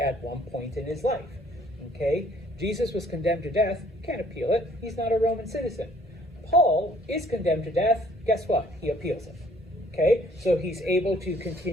one point in his life. Jesus was condemned to death, can't appeal it. He's not a Roman citizen. Paul is condemned to death. Guess what? He appeals it. So he's able to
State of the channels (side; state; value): both; normal; correlation 0.60